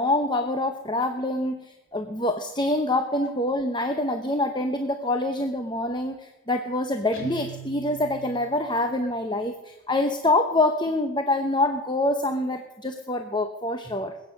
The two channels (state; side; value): normal; both; correlation 0.36